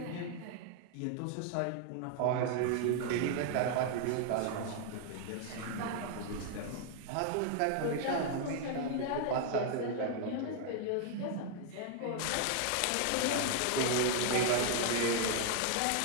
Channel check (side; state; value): both; different; correlation 0.00